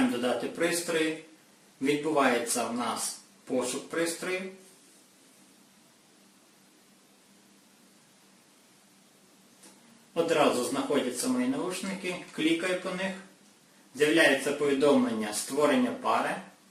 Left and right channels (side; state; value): both; identical; correlation 1.00